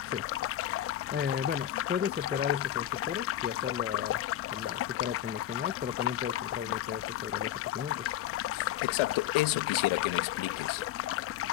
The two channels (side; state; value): right; quieter; 12.0 dB